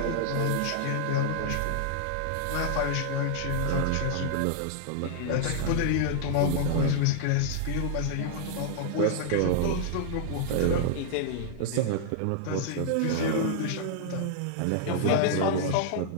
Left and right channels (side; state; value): both; different; correlation -0.01